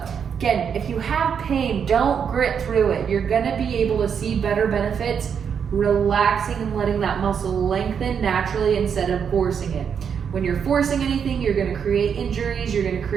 again, if you have pain, don't grit through it. You're going to be able to see better benefits relaxing and letting that muscle lengthen naturally instead of forcing it. When you're forcing anything, you're going to create injuries, you're going to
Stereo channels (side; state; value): left; quieter; 7.2 dB